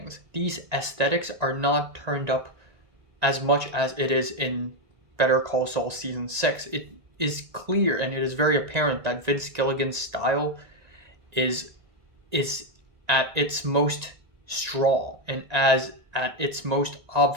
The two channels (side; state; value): left; late; 1.9 ms